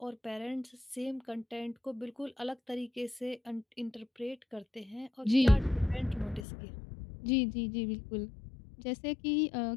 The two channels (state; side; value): drops out; right; at 6.5 s